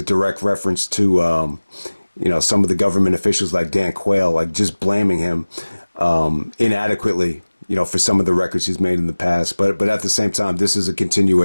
direct reference to some of the government officials like Dan Quayle, like just blaming him inadequately, for some of the records he's made in the past. But at the same time, this is a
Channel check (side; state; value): both; inverted; correlation -1.00